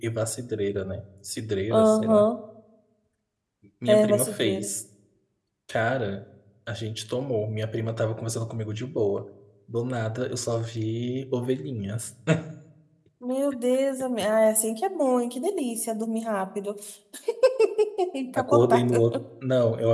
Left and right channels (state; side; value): identical; both; correlation 1.00